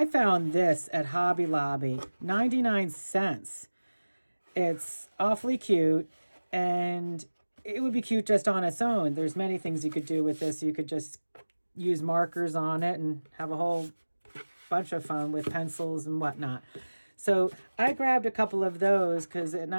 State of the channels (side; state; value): both; inverted; correlation -1.00